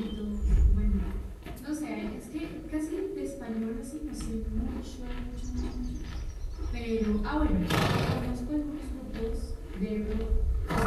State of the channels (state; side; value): identical; both; correlation 1.00